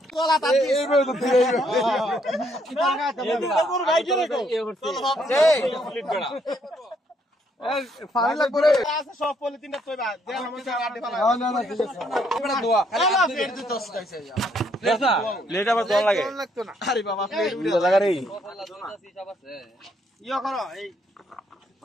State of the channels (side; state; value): both; normal; correlation 0.71